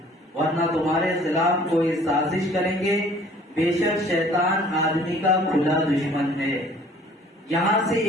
ورنہ تمہارے خلاف کوئی سازش کریں گے، بے شک شیطان آدمی کا کھلا دشمن ہے۔ یہاں سے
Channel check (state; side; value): normal; both; correlation 0.53